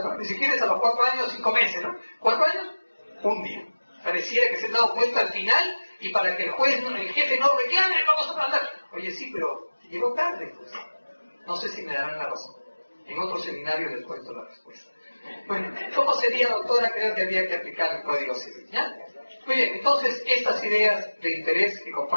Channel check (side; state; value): both; inverted; correlation -1.00